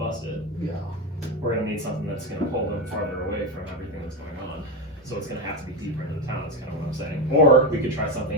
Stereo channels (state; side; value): normal; both; correlation 0.15